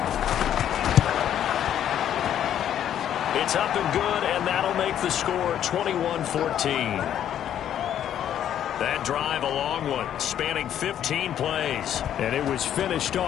It's up and good, and that'll make the score 21-14. That drive a long one, spanning 15 plays. And it was finished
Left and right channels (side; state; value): right; quieter; 10.3 dB